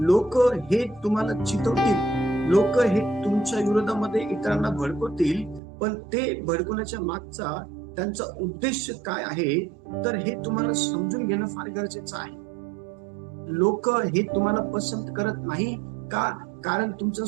हे तुम्हाला चितवतील, लोक हे तुमच्या विरोधामध्ये इतरांना भडकवतील, पण ते भडकवण्याच्या मागचा त्यांचा उद्देश काय आहे तर हे तुम्हाला समजून घेणं फार गरजेचं आहे. लोक हे तुम्हाला पसंत करत नाही का, कारण तुमचा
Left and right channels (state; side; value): drops out; left; at 5.6 s